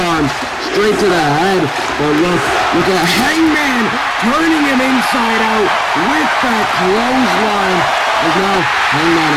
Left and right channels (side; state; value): both; identical; correlation 1.00